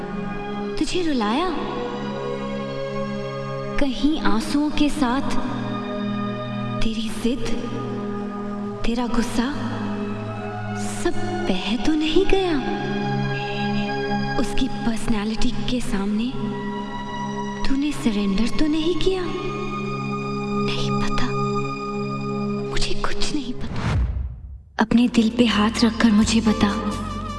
तुझे रुलाया, कहीं आंसुओं के साथ तेरी जिद, तेरा गुस्सा सब बह तो नहीं गया? उसकी पर्सनालिटी के सामने तूने सरेंडर तो नहीं किया? नहीं पता, मुझे कुछ नहीं पता। अपने दिल पे हाथ रखकर मुझे बता,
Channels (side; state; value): both; identical; correlation 1.00